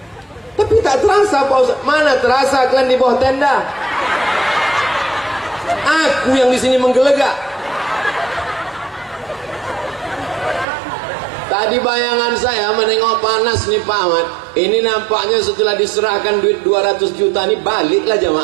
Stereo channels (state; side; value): drops out; left; at 10.7 s